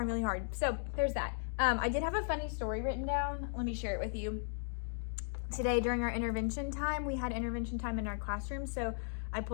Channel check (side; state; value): right; silent; digital silence